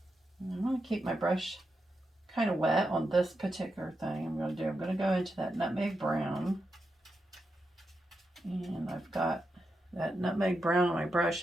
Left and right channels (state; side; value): normal; both; correlation 0.87